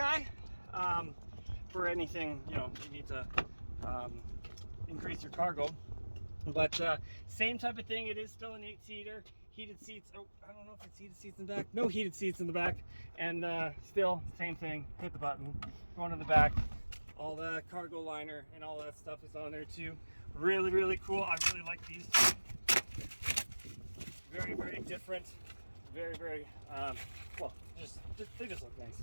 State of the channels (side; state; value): both; inverted; correlation -1.00